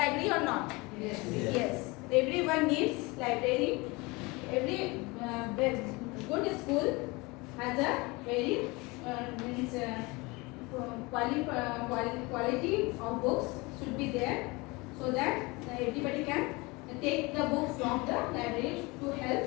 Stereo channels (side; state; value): right; quieter; 24.9 dB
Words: or not? Yes. Yes. Everyone needs library. Every good school has a very means quality of books should be there, so that everybody can take the book from the library to